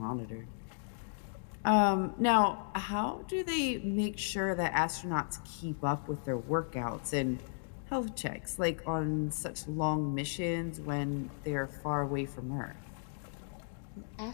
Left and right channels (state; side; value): silent; right; digital silence